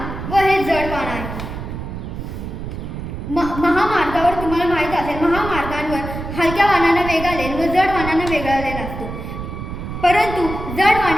व हे जड वाहन आहे. महामार्गावर तुम्हाला माहीत असेल, महामार्गांवर हलक्या वाहनांना वेगळा लेन व जड वाहनांना वेगळा लेन असतो. परंतु जड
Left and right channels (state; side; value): noise; right; rumble, 7 dB below the sound